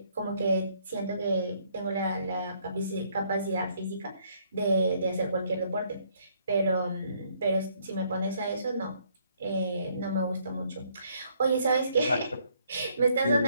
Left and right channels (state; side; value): inverted; both; correlation -0.67